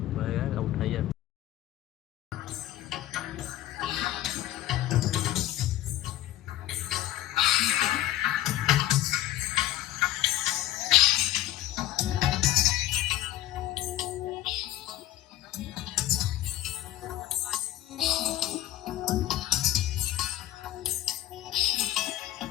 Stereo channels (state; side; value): quieter; right; 14.5 dB